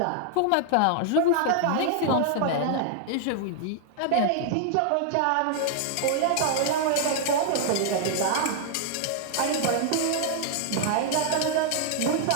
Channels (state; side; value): different; both; correlation 0.00